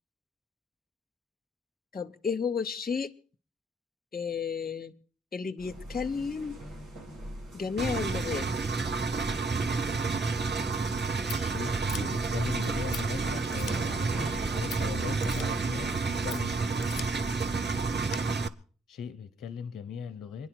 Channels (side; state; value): both; normal; correlation 0.66